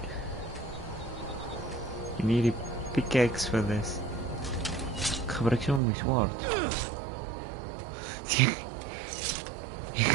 You need a pickaxe for this. Ik gebruik zo mijn zwaard.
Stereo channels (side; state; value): left; drops out; at 5.8 s